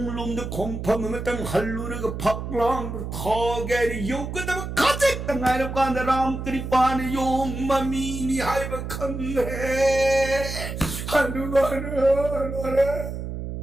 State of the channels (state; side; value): noise; right; hum, 6 dB below the sound